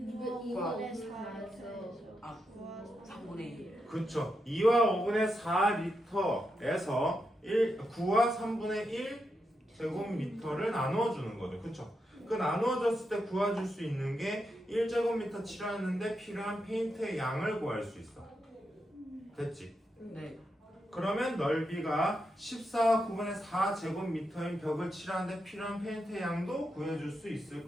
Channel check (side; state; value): both; normal; correlation 0.85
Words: 4에서 아, 3분의 1. 그렇죠. 2와 5분의 4리터에서 9와 3분의 1 제곱미터를 나누어주는 거죠. 그렇죠? 그 나누어졌을 때 구해줄 수 있는 게 1제곱미터 칠하는데 필요한 페인트의 양을 구할 수 있어. 됐지? 네. 그러면 넓이가 14와 9분의 4제곱미터인 벽을 칠하는데 필요한 페인트의 양도 구해줄 수 있을